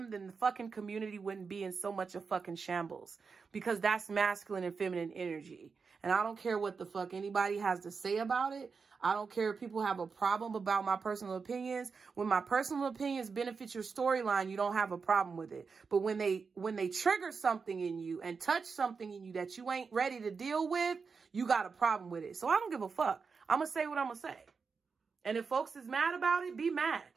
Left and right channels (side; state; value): left; quieter; 5.2 dB